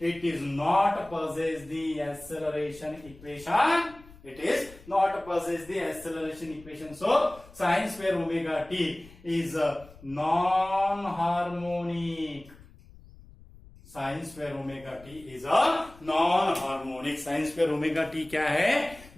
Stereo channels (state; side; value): noise; left; rumble, 22 dB below the sound